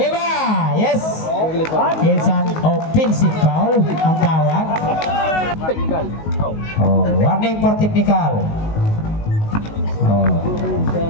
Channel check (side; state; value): right; late; 19 ms